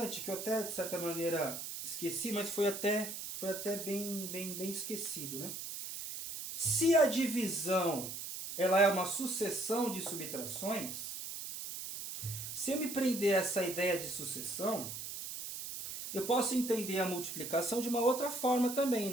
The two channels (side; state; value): right; noise; hiss, 7 dB below the sound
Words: que eu até, de certa maneira, esqueci, mas foi até bem esquecido, né? Se a divisão ela é uma sucessão de subtrações, se eu me prender a essa ideia de sucessão, eu posso entender a multiplicação de uma outra forma também,